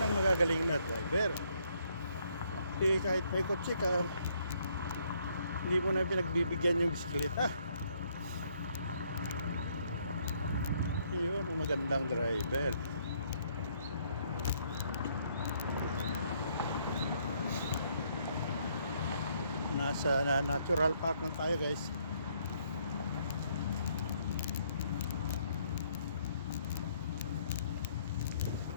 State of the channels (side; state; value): both; inverted; correlation -0.68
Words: magagaling na driver. Eh, kahit may kotse ka, hindi mo na pinagbibigyan yung bisikleta. Yun ang magandang driver. Nasa natural park na tayo, guys.